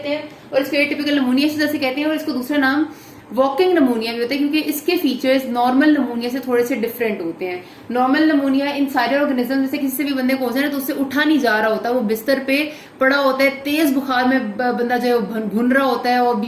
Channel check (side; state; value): both; identical; correlation 1.00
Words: हैं, और इसको एटिपिकल नमूनिया से जैसे कहते हैं, और इसको दूसरा नाम वॉकिंग नमूनिया भी होता है, क्योंकि इसके फीचर्स नॉर्मल नमूनिया से थोड़े से डिफरेंट होते हैं। नॉर्मल नमूनिया इन सारे ऑर्गेनिज्म जैसे किसी से भी बंदे को हो जाए ना तो उससे उठा नहीं जा रहा होता, वो बिस्तर पे पड़ा होता है, तेज बुखार में बंदा जो है भुन रहा होता है और